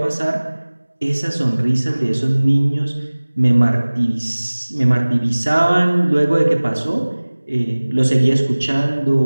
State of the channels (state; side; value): inverted; both; correlation -1.00